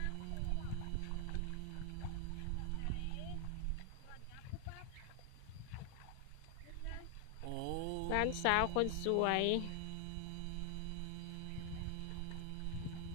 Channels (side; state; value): both; different; correlation 0.00